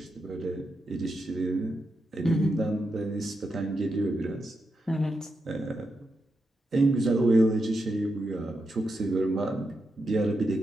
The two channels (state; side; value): normal; both; correlation 0.86